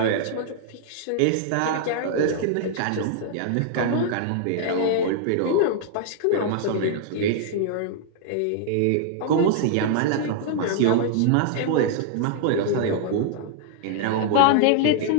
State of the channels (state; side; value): different; both; correlation 0.00